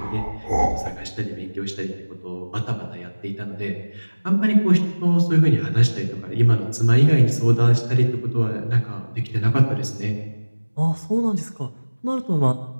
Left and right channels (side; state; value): both; inverted; correlation -1.00